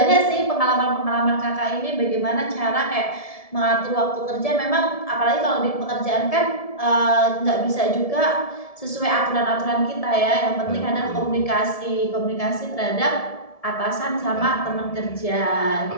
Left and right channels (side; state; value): right; late; 1.7 ms